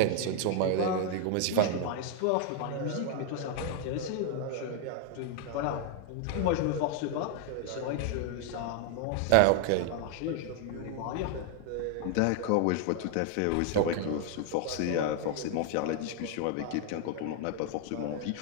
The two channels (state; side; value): different; both; correlation 0.00